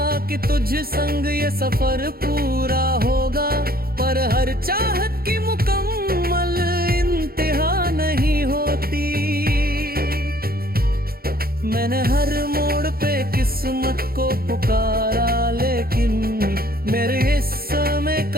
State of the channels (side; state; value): left; late; 0.44 ms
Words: कि तुझ संग ये सफर पूरा होगा, पर हर चाहत की मुकम्मल इंतहा नहीं होती। मैंने हर मोड़ पे किस्मत को पुकारा, लेकिन मेरे हिस्से में